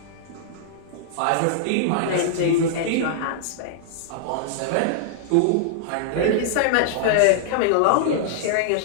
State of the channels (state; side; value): different; both; correlation -0.01